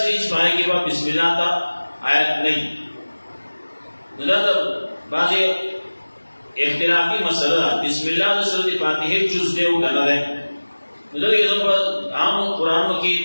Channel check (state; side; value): inverted; both; correlation -1.00